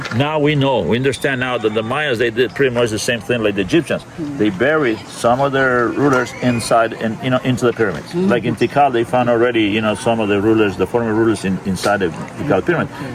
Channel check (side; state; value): both; identical; correlation 1.00